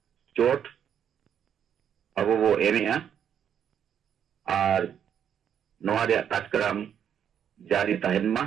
चोट अब वो एनेआ और नोआ रे कार्यक्रम जारी तहनमा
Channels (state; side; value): quieter; left; 8.8 dB